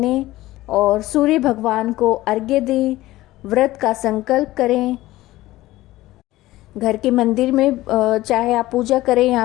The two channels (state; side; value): quieter; right; 16.9 dB